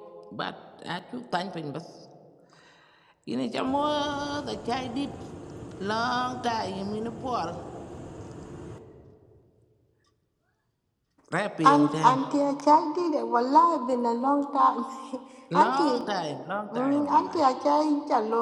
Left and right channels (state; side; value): identical; both; correlation 1.00